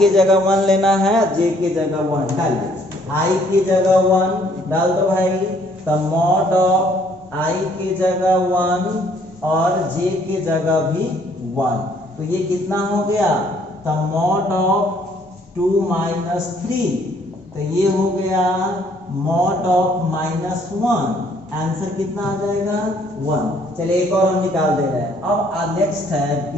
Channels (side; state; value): both; normal; correlation 0.63